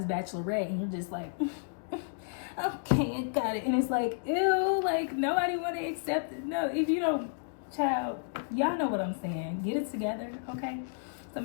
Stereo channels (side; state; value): right; silent; digital silence